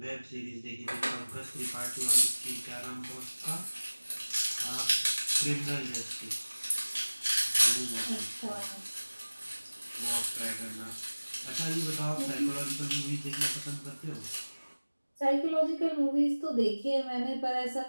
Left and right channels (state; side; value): inverted; both; correlation -1.00